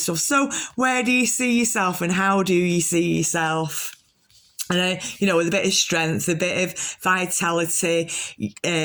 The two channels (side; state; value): both; identical; correlation 1.00